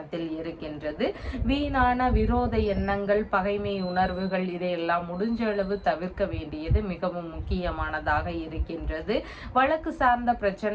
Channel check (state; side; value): identical; both; correlation 1.00